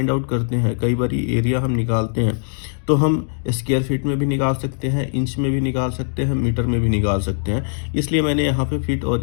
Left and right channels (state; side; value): silent; right; digital silence